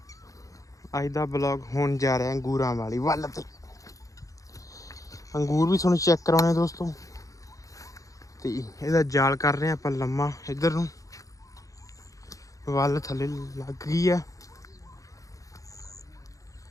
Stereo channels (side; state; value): right; late; 0.16 ms